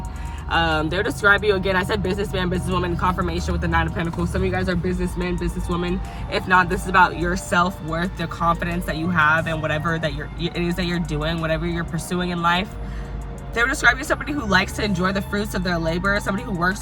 They'll describe you, again, I said businessman, businesswoman, confirmation with the 9 of Pentacles. Some of you guys are businessmen, businesswomen. If not, this is about your self-worth, the confidence that you have in whatever it is that you're doing, whatever you're pursuing in life. They would describe you as somebody who likes to enjoy the fruits of their labor, somebody who works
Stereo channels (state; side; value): identical; both; correlation 1.00